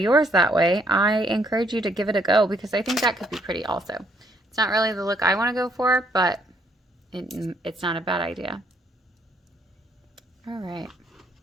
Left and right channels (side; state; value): both; normal; correlation 0.68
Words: that way, I encourage you to give it a go because I think that could be pretty also. It's not really the look I want to go for, but it's not a bad idea. All right.